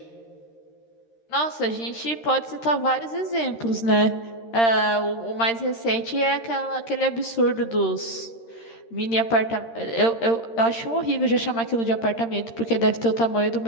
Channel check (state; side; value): late; right; 13 ms